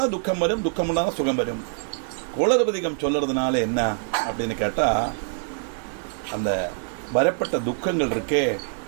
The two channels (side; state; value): left; silent; digital silence